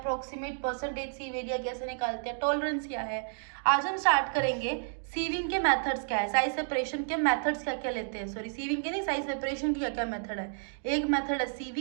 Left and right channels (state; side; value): silent; left; digital silence